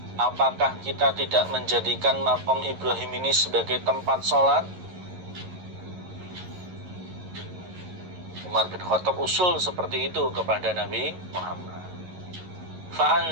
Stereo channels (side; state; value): left; late; 11 ms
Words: apakah kita tidak menjadikan makom Ibrahim ini sebagai tempat sholat? Umar bin Khattab usul seperti itu kepada Nabi Muhammad.